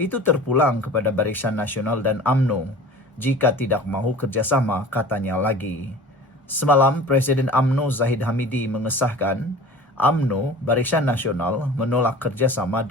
terpulang kepada Barisan Nasional dan UMNO. Jika tidak mahu kerjasama, katanya lagi. Semalam, Presiden UMNO Zahid Hamidi mengesahkan UMNO, Barisan Nasional, menolak kerjasama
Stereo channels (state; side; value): normal; both; correlation 0.41